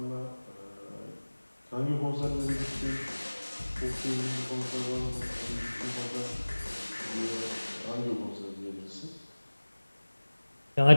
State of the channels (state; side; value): inverted; both; correlation -1.00